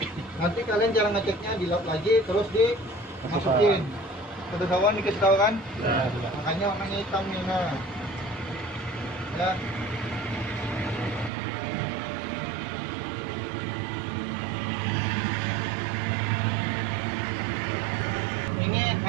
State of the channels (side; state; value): left; drops out; at 11.3 s